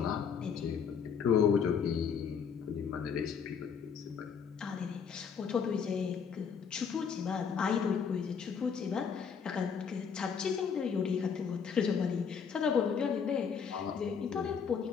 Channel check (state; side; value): quieter; right; 6.6 dB